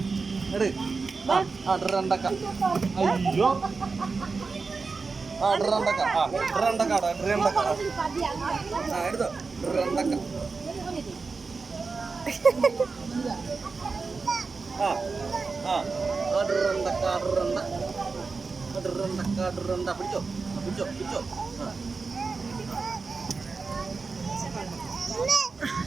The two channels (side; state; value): left; quieter; 4.4 dB